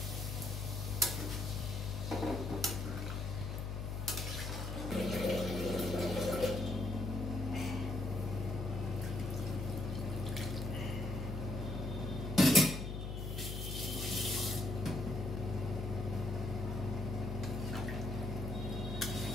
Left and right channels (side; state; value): left; noise; hum, 4 dB below the sound